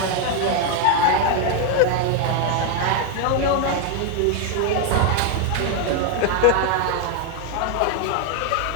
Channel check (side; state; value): both; different; correlation 0.01